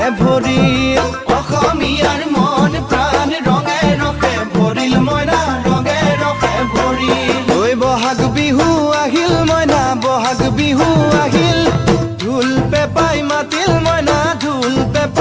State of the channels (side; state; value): both; identical; correlation 1.00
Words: ভৰিল অসমীয়াৰ মন প্ৰাণ ৰঙে ৰসে ভৰিল মইনা ৰঙে ৰসে ভৰিল ঐ বহাগ বিহু আহিল মইনা বহাগ বিহু আহিল ঢোল পেপাই মাতিল মইনা ঢোল